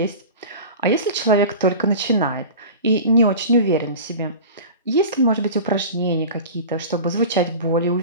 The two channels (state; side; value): inverted; both; correlation -0.34